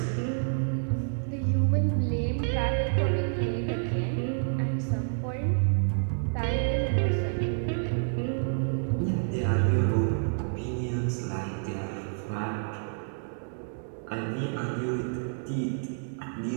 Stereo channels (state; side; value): silent; left; digital silence